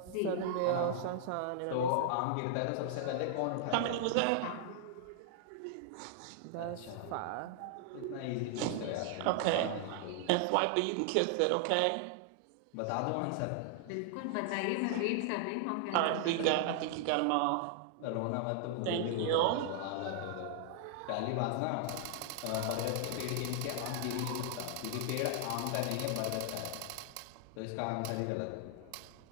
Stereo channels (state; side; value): different; both; correlation 0.00